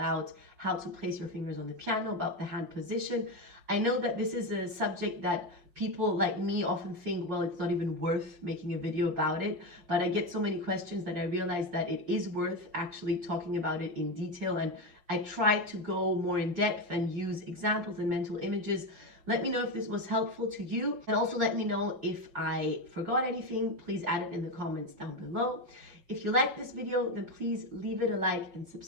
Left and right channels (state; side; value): late; left; 5.2 ms